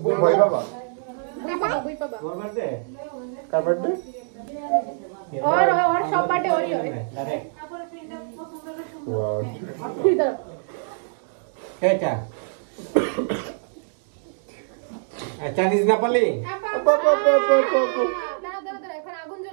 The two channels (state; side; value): silent; left; digital silence